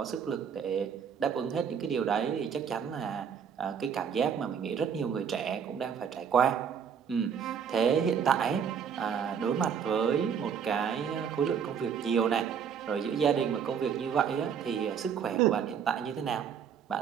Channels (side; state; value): left; quieter; 7.4 dB